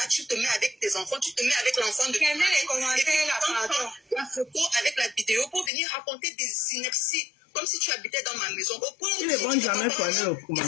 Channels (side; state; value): right; drops out; at 5.7 s